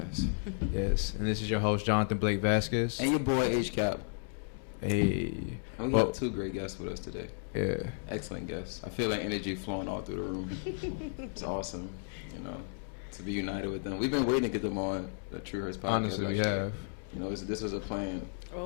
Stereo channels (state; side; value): silent; right; digital silence